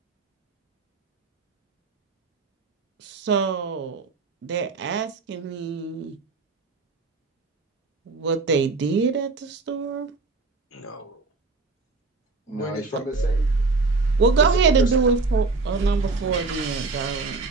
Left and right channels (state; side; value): quieter; left; 3.9 dB